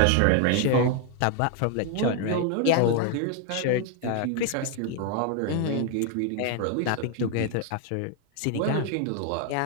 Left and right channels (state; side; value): different; both; correlation 0.01